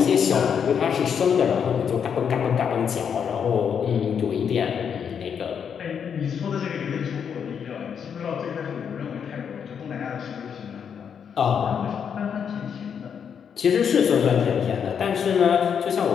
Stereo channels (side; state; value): right; quieter; 7.4 dB